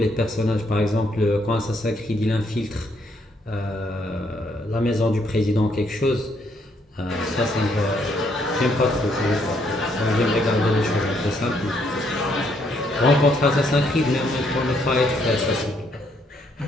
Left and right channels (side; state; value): both; normal; correlation 0.72